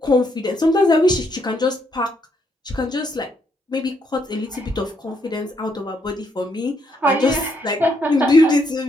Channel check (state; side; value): normal; both; correlation 0.74